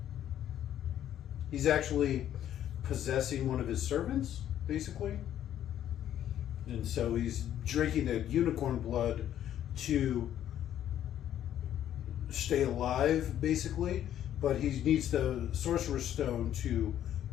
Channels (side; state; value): right; quieter; 11.1 dB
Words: He's actually possessing one of his servants, basically. And so he's drinking the unicorn blood to stay alive, basically. But he needs the Sorcerer's Stone to